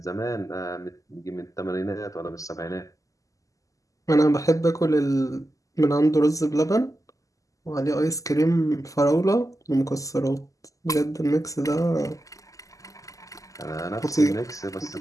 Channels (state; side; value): late; right; 0.16 ms